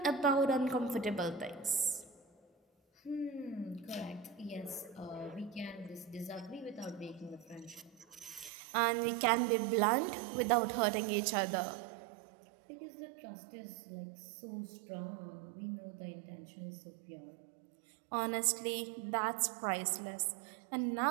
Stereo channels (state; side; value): drops out; left; at 8.5 s